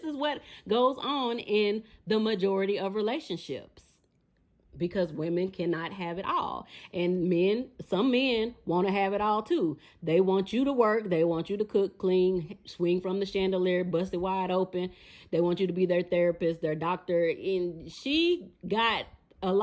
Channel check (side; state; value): both; identical; correlation 1.00